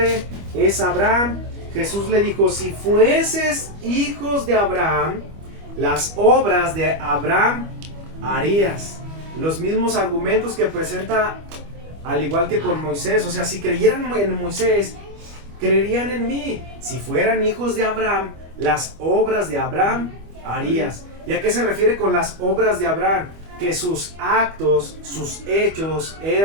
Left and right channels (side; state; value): left; late; 25 ms